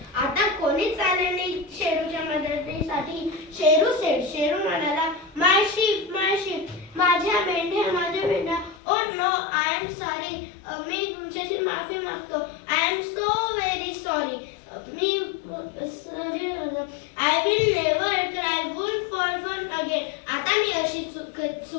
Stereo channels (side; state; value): right; drops out; at 8.8 s